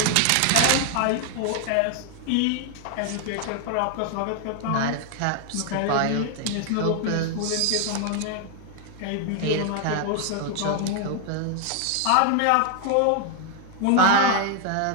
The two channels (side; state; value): both; different; correlation 0.00